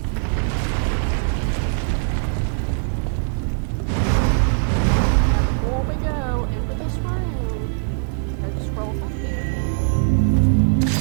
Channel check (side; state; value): left; silent; 65 dB below the other